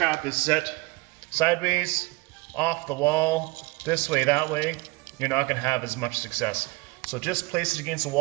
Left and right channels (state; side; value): quieter; left; 24.1 dB